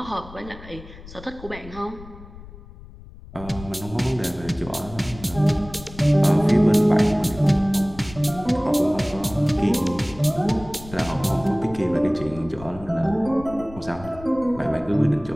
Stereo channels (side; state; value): left; noise; rumble, 17 dB below the sound